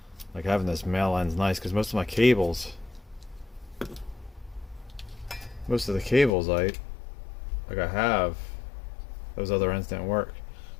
Like having this male end's nice because most of the cables I have, those other ends didn't work.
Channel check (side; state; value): right; drops out; at 6.3 s